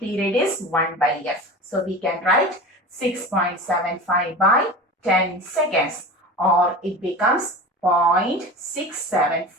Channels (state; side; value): normal; both; correlation 0.33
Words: is 1 by f. So we can write 6.75 by 10 seconds, or it becomes